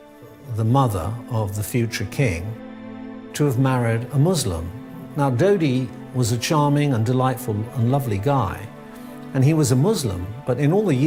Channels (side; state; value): both; identical; correlation 1.00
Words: the mother of the future king, to have married a Muslim. Now, Dody was a charming and delightful and lovely guy, and he was a Muslim, but in all the